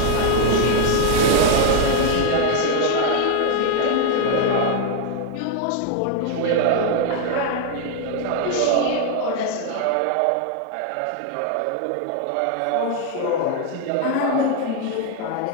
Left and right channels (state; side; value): different; both; correlation 0.00